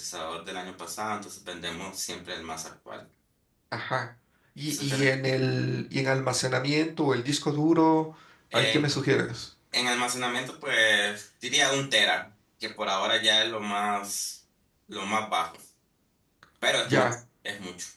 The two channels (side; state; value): both; identical; correlation 1.00